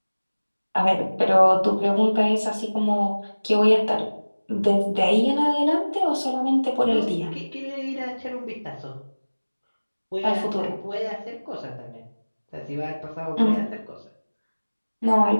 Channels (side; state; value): both; inverted; correlation -1.00